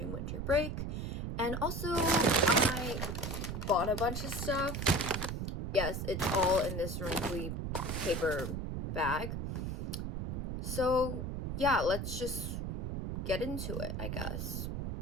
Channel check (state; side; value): noise; right; rumble, 3 dB below the sound